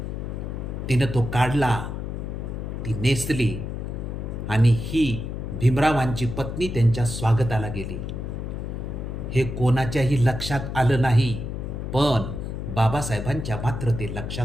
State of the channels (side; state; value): left; noise; hum, 5 dB below the sound